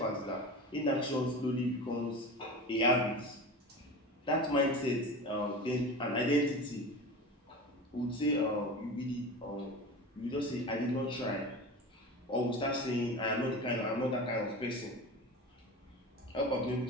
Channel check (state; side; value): normal; both; correlation 0.31